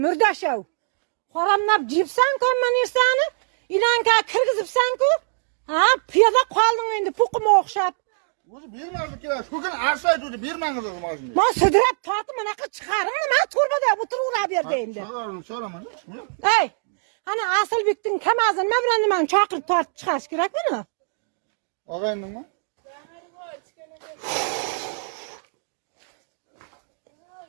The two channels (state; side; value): silent; left; digital silence